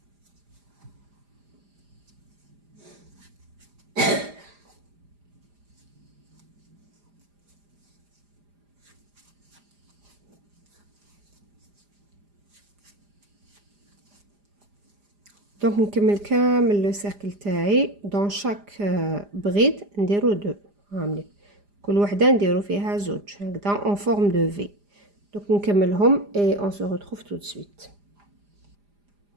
دونك نكمل كامل لو سيركل تاعي دون شاك بريد نديرو 2 هامليك كل وحده نديرو فيها زوج هكذا اون فورم دو في. دونك نكملهم اي اون سو ريتروف تو سويت.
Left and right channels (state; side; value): late; left; 4.9 ms